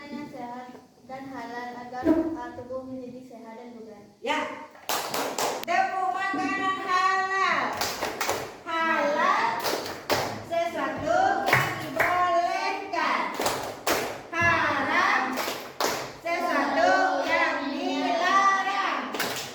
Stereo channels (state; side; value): identical; both; correlation 1.00